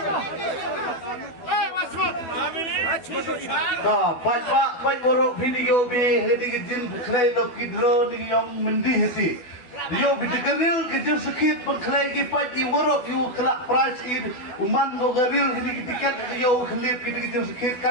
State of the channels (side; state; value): right; late; 12 ms